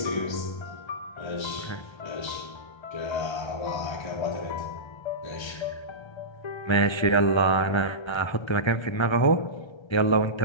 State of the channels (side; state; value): right; late; 1.3 ms